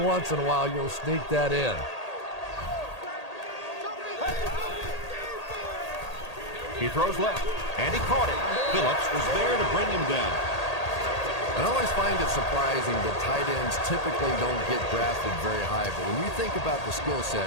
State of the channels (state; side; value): late; right; 1.8 ms